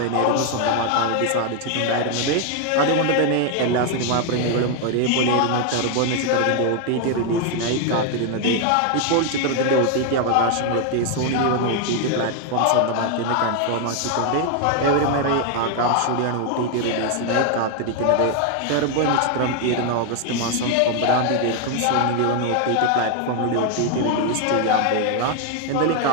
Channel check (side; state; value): both; different; correlation 0.01